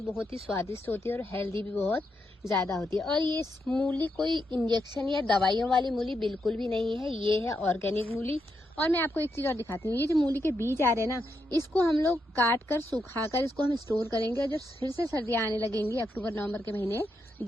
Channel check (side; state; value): both; normal; correlation 0.82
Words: बहुत ही स्वादिष्ट होती है और हेल्दी भी बहुत ज़्यादा होती है। और ये मूली कोई इंजेक्शन या दवाइयों वाली मूली बिल्कुल भी नहीं है, ये है ऑर्गेनिक मूली। और मैं आपको एक चीज़ और दिखाती हूँ, ये जो मूली के बीज आ रहे हैं ना, इसको हम लोग काट कर सुखा कर इसको हम स्टोर करेंगे और जब फिर से सर्दियाँ आने लगेंगी अक्टूबर नवंबर के महीने,